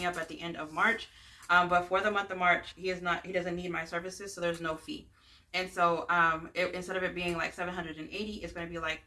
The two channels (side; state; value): both; identical; correlation 1.00